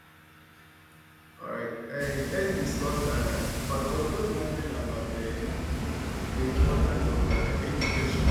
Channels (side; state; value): both; identical; correlation 1.00